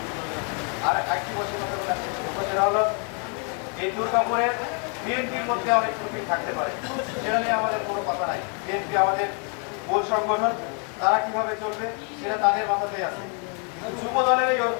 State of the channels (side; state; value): right; quieter; 38.6 dB